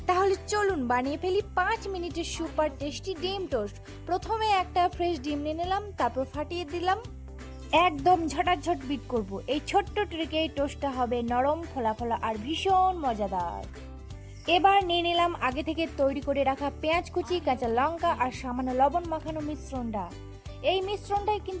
তাহলে চলুন বানিয়ে ফেলি 5 মিনিটের সুপার টেস্টি ডিম টোস্ট। প্রথমে একটা ফ্রেশ ডিম নিয়ে নিলাম, তারপর ফাটিয়ে দিলাম। একদম ঝটাঝট বিট করব। এই ছোট্ট ট্রিকে এই টোস্টটা হবে নরম, ফোলা ফোলা আর ভীষণ মজাদার। এবার নিয়ে নিলাম আগে থেকে তৈরি করে রাখা পেঁয়াজ কুচি, কাঁচা লঙ্কা আর সামান্য লবণ মাখানো মিশ্রণটা। এই মিশ্রণটাই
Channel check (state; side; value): identical; both; correlation 1.00